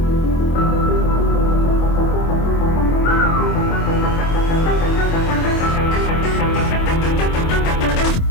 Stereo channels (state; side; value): late; right; 25 ms